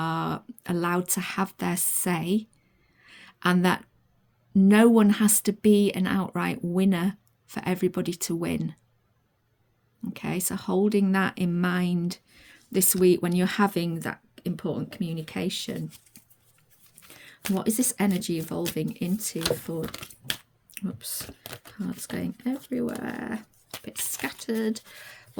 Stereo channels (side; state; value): both; identical; correlation 1.00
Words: allowed to have their say, and that no one has to be an outright winner for everybody to win. Okay, so holding that in mind this week when you're having that important communication. What is this energy evolving into for... Oops, cards going everywhere. A bit scattered.